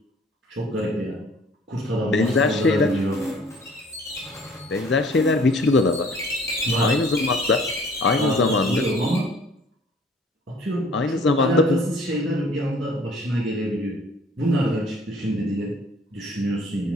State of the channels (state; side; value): normal; both; correlation 0.54